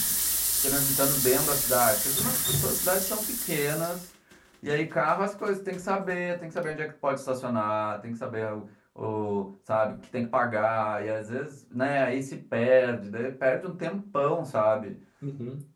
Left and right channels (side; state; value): both; identical; correlation 1.00